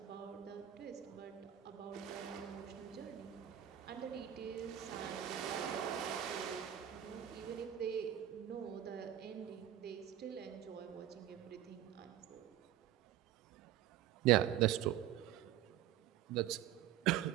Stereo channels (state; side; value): quieter; left; 11.7 dB